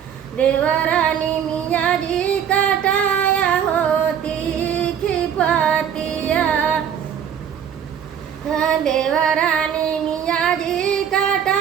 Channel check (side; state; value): left; quieter; 8.6 dB